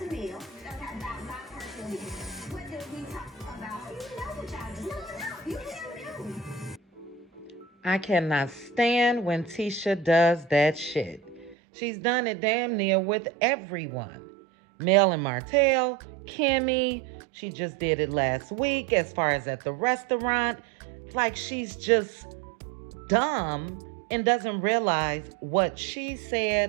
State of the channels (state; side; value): drops out; left; at 11.6 s